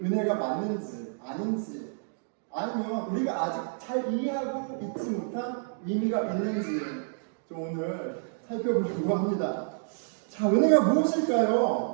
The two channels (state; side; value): silent; left; digital silence